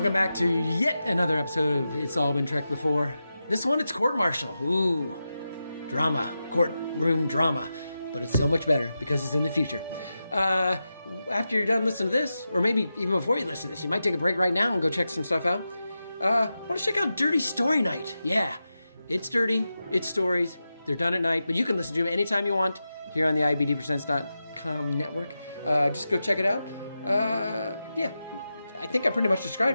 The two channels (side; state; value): both; inverted; correlation -0.91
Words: back to yet another episode of It's All Been Trekked Before. This one, it's court-martial. Ooh, drama, courtroom drama. But it's so much better because it's in the future. After you're done listening to this, or maybe even before you listen to this, you might take a break right now and go check some stuff out. Want to check out Dirty Story Night. Yeah, it's dirty, it's stories, they're done at night, but you can listen to them anytime you want here on the IABDpresents.com network. Just go check it out. Yeah, I think I pretty much